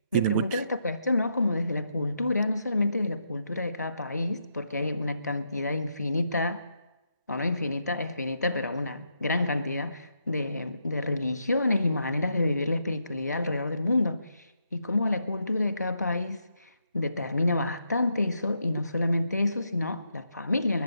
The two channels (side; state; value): both; inverted; correlation -0.80